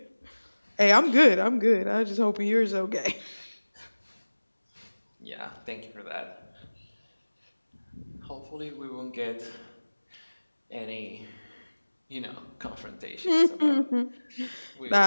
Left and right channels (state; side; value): inverted; both; correlation -1.00